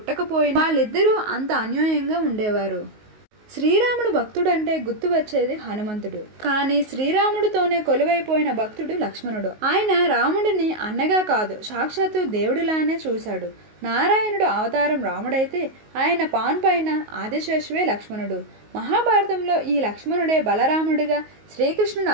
వాళ్ళిద్దరూ అంత అన్యోన్యంగా ఉండేవారు. శ్రీరాముడు భక్తుడంటే గుర్తు వచ్చేది హనుమంతుడు. కానీ శ్రీరాముడితోనే కొలువైపోయిన భక్తుడు లక్ష్మణుడు. ఆయన రాముడిని అన్నగా కాదు, సాక్షాత్తు దేవుడిలానే చూశాడు. నారాయణుడు అవతారం రాముడైతే ఆయన పాన్ పైన ఆదిశేషువే లక్ష్మణుడు. మహాభారతంలో ఈ లక్ష్మణుడే బలరాముడిగా శ్రీకృష్ణుడు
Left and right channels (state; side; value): late; left; 19 ms